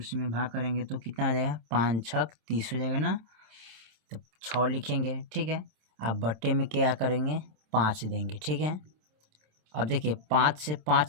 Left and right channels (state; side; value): late; left; 27 ms